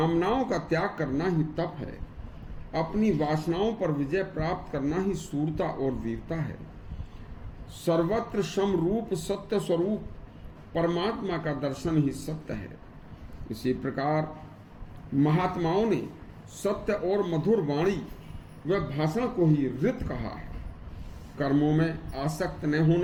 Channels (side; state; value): both; identical; correlation 1.00